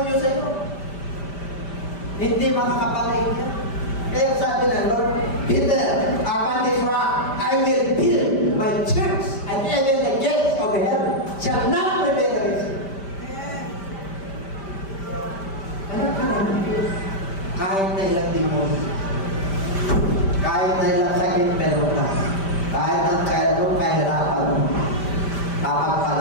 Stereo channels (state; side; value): late; right; 5.1 ms